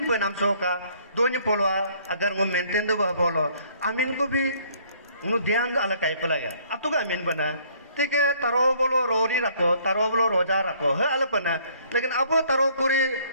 पे नाम सो का दोनों पोलवा अगर वो मेंटेन दो बोलो अमीन को भी उन्हें ध्यान अलग कहीं पे लगा अब तो का अमीन बना ठीक है तरो बोलो रोरी रखो तरो बोलो रोजा रखो है अलग बना लेकिन अब तरो पूरी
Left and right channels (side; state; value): both; inverted; correlation -0.61